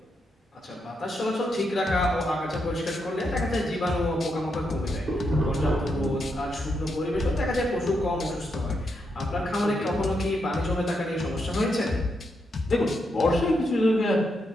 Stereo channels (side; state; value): both; normal; correlation 0.81